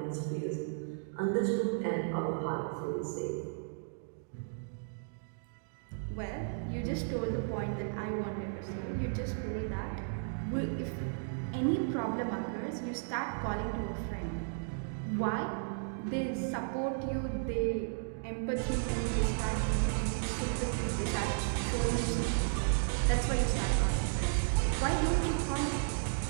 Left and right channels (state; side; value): silent; left; digital silence